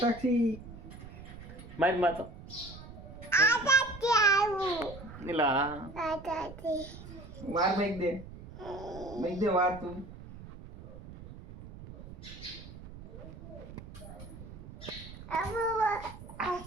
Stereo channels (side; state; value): right; noise; rumble, 14 dB below the sound